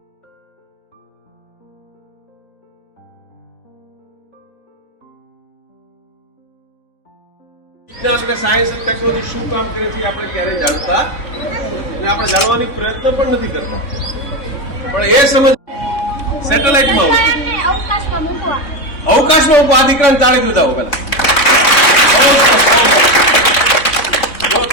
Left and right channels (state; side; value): late; right; 3.6 ms